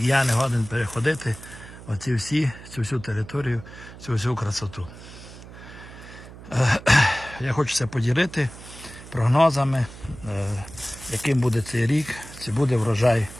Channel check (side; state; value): right; noise; hum, 16 dB below the sound